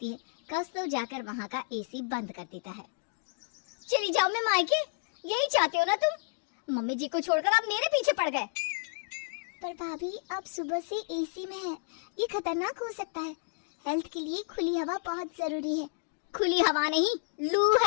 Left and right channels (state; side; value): silent; right; digital silence